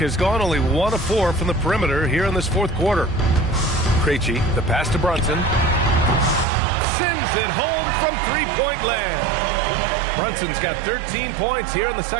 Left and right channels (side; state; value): left; drops out; at 6.5 s